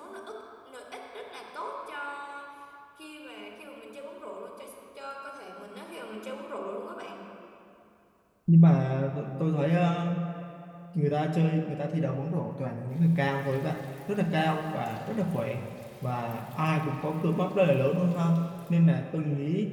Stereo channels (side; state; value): both; identical; correlation 1.00